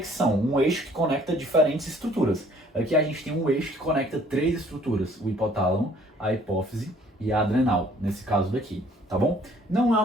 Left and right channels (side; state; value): both; normal; correlation 0.58